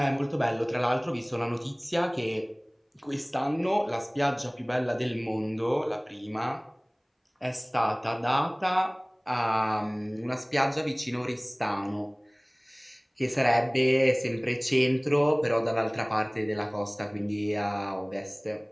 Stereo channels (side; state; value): both; identical; correlation 1.00